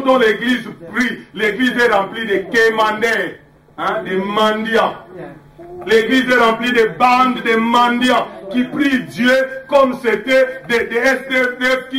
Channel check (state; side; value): identical; both; correlation 1.00